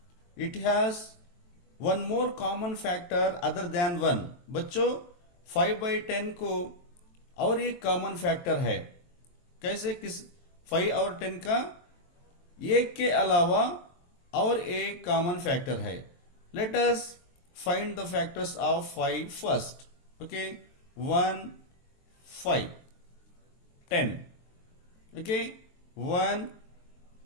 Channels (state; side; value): late; right; 23 ms